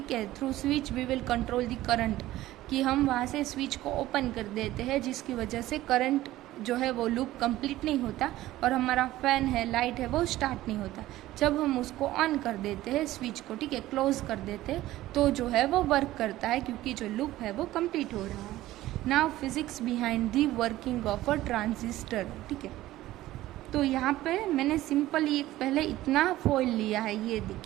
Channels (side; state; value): left; quieter; 15.7 dB